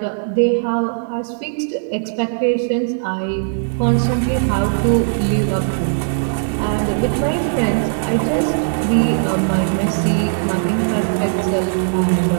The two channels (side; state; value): left; silent; 67 dB below the other